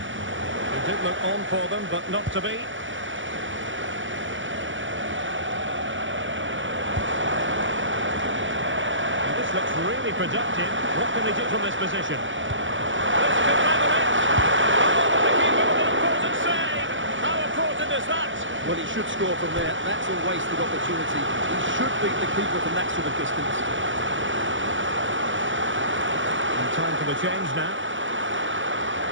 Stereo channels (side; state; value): left; late; 0.55 ms